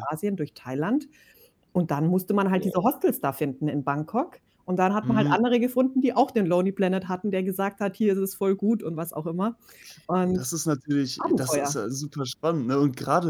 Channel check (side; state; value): both; identical; correlation 1.00